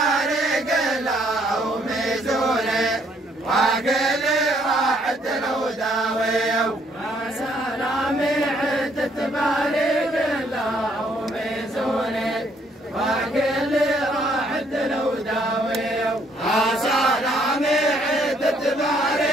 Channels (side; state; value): both; normal; correlation 0.67